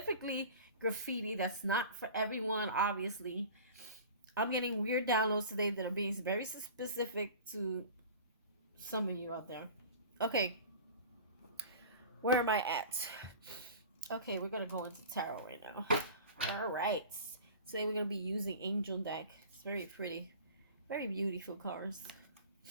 graffiti, that's not for everyone, obviously. I'm getting weird downloads today that are being very specific to some of you out there. Okay, where am I at? Okay, we're gonna go into tarot right now. All right, today we're gonna be using Angel deck. It's very pretty, very beautiful cards.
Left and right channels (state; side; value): inverted; both; correlation -0.39